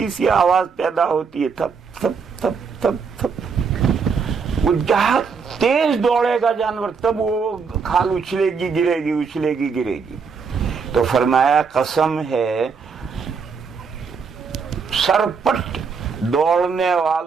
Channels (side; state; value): left; quieter; 5.6 dB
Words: سی آواز پیدا ہوتی ہے، تھپ تھپ تھپ تھپ تھپ۔ وہ جہاں تیز دوڑے گا جانور تب وہ کھال اچھلے گی گرے گی، اچھلے گی گرے گی۔ تو فرمایا قسم ہے سرپٹ دوڑنے